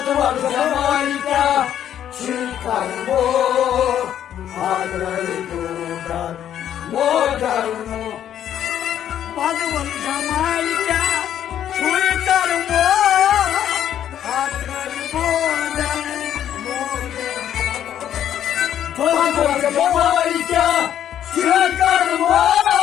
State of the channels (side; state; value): right; quieter; 10.4 dB